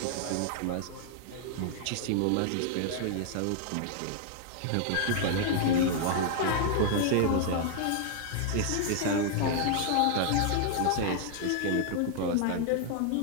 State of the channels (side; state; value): both; different; correlation 0.00